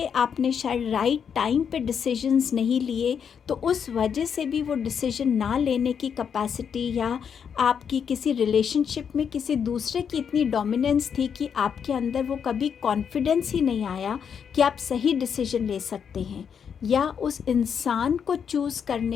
आपने शायद राइट टाइम पे डिसीजंस नहीं लिए, तो उस वजह से भी वो डिसीजन ना लेने की कैपेसिटी या आपकी किसी रिलेशनशिप में किसी दूसरे की इतनी डोमिनेंस थी कि आपके अंदर वो कभी कॉन्फिडेंस ही नहीं आया कि आप सही डिसीजन ले सकते हैं, या उस इंसान को चूज़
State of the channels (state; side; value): quieter; right; 7.3 dB